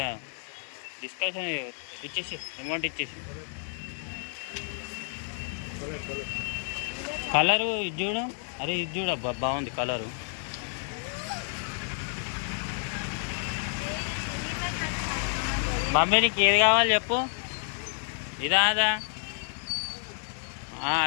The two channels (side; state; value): right; silent; 58 dB below the other